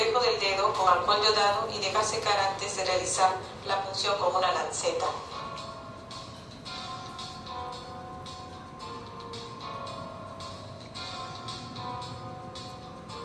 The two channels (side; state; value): both; identical; correlation 1.00